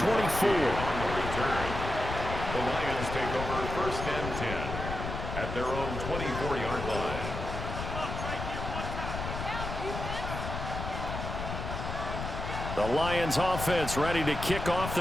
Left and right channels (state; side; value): noise; left; rumble, 5 dB below the sound